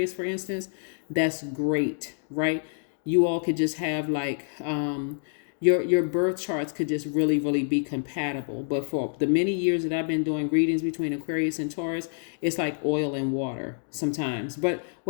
for instance, that's great, right? You all could just have like, your birth charts could just really, really be compatible. But for the many years that I've been doing readings between Aquarius and Taurus, it's like oil and water sometimes. But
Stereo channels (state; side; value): silent; right; digital silence